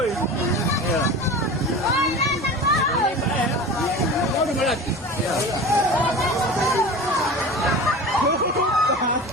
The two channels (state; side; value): normal; both; correlation 0.34